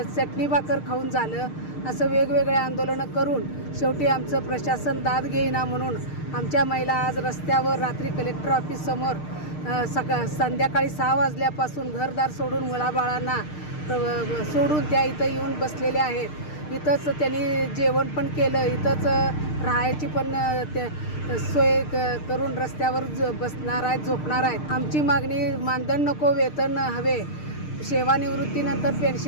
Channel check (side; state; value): right; late; 6.6 ms